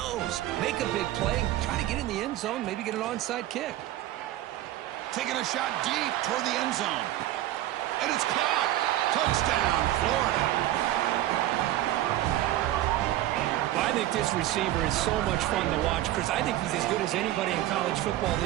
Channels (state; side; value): quieter; left; 14.3 dB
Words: Make a big play, try to get in the end zone, maybe get an onside kick. Taking a shot deep toward the end zone. And it's caught. Touchdown, Florida. I think this receiver is so much fun to watch, Chris. I think he's as good as anybody in college football